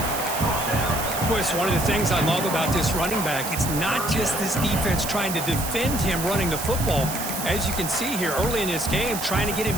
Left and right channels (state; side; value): noise; right; hiss, 6 dB below the sound